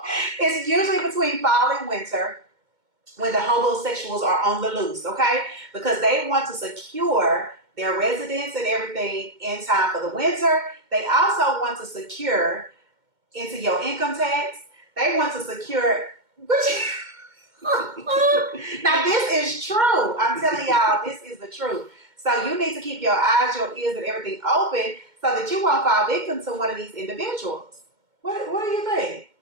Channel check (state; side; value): late; left; 2.1 ms